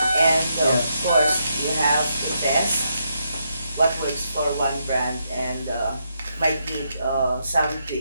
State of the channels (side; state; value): both; inverted; correlation -0.80